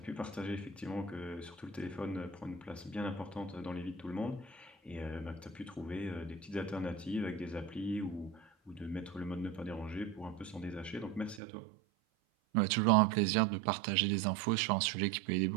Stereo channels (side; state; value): left; drops out; at 11.4 s